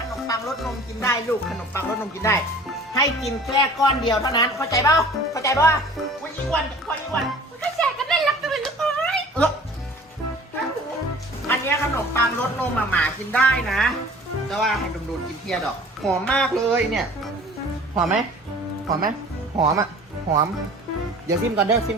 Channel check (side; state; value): both; normal; correlation 0.46